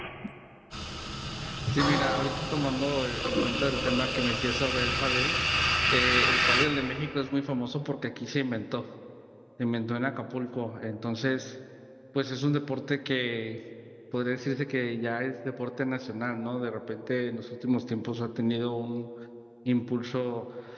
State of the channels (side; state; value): both; identical; correlation 1.00